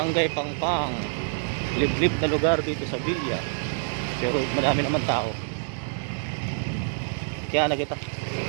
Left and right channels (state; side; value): silent; left; digital silence